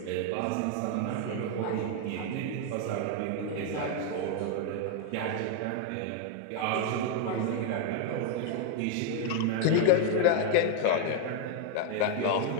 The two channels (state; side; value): different; both; correlation 0.01